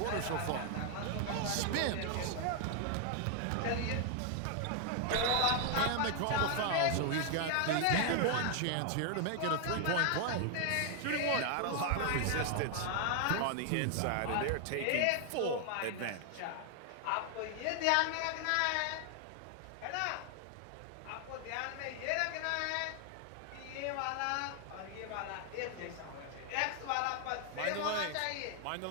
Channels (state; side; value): different; both; correlation 0.00